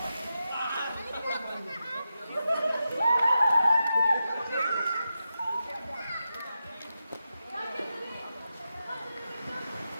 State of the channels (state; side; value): inverted; both; correlation -0.90